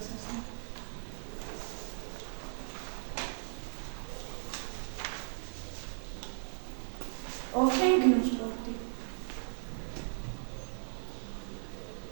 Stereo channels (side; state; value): left; silent; digital silence